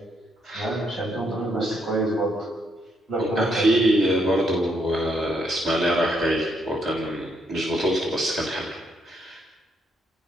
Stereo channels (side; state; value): both; normal; correlation 0.75